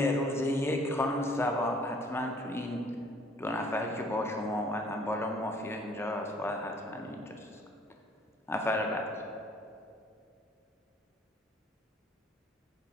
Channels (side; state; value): both; normal; correlation 0.57